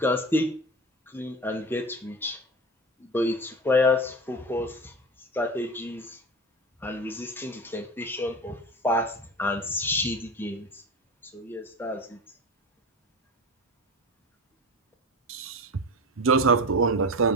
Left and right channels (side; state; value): both; normal; correlation 0.28